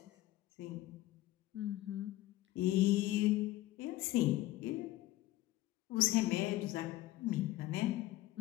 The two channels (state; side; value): quieter; right; 16.4 dB